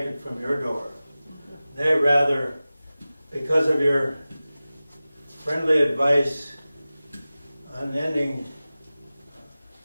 from your door. Nay, rather, because of your friendly advice, unending,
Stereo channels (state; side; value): inverted; both; correlation -0.97